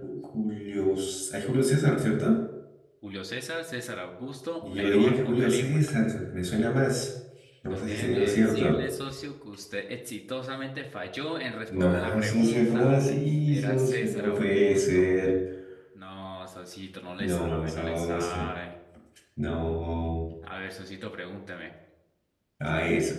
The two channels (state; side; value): identical; both; correlation 1.00